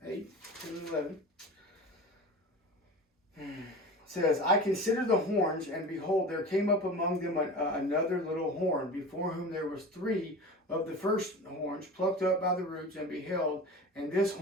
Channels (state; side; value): normal; both; correlation 0.34